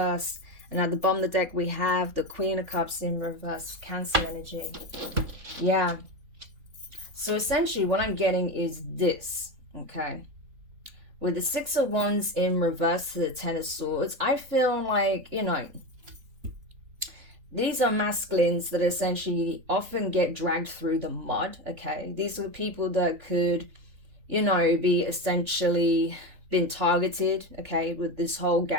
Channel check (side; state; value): left; late; 3.4 ms